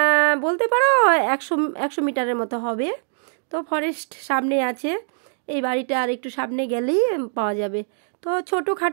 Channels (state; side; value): silent; left; 62 dB below the other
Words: বলতে পারো 100 মিটারের মতো হবে। তো ফরেস্ট সামনে আছে, এই বাড়িটা আর একটু সামনে গেলেই পাওয়া যাবে। তো